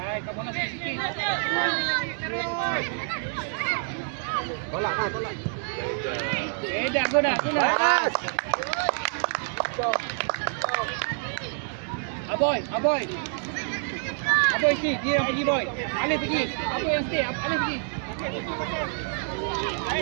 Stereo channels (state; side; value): silent; left; 60 dB below the other